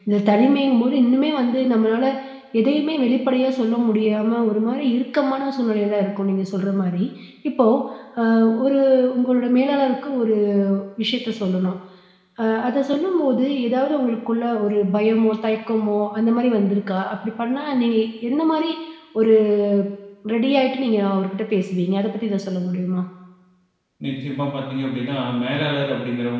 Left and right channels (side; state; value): both; identical; correlation 1.00